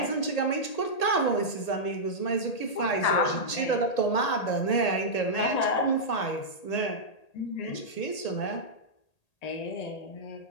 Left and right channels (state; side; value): late; right; 1.8 ms